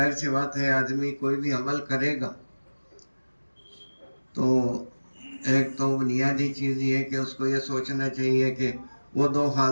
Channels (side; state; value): both; inverted; correlation -1.00